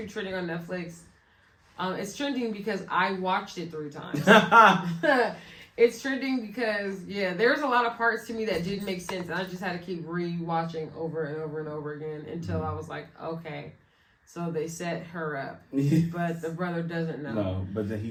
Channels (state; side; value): identical; both; correlation 1.00